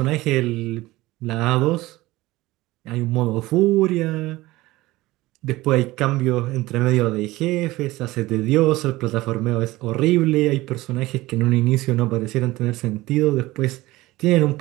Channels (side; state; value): left; quieter; 18.8 dB